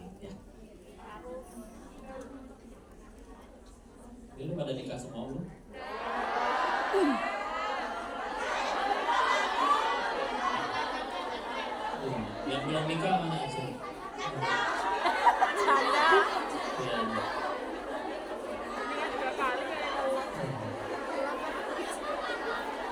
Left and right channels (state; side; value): identical; both; correlation 1.00